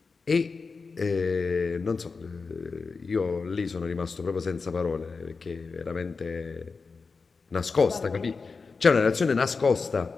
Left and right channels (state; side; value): quieter; right; 4.6 dB